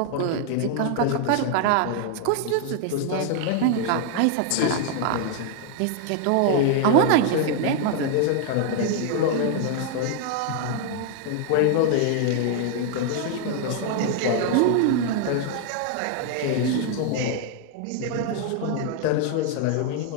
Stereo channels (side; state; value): both; different; correlation 0.00